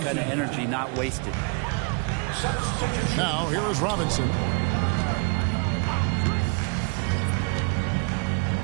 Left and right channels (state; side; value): quieter; left; 33.1 dB